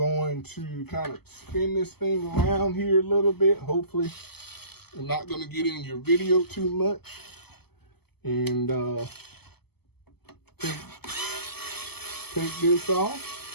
to kind of spin this thing around here a little bit. Hopefully I'm not going to get in your video too much. And take this off.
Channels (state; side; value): late; right; 0.97 ms